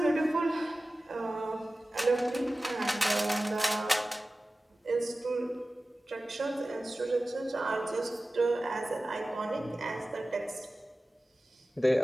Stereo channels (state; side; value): normal; both; correlation 0.96